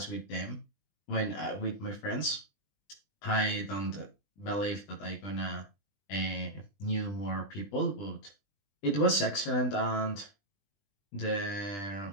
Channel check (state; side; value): late; right; 20 ms